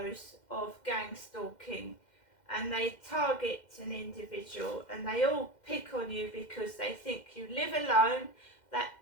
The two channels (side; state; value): right; late; 2.1 ms